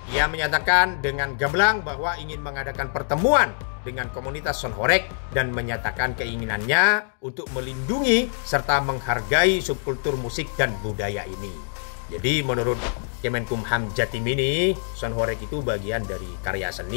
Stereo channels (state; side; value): silent; right; digital silence